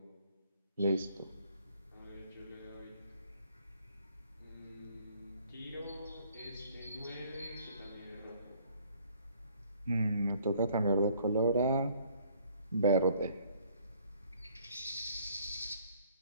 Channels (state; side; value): inverted; both; correlation -0.60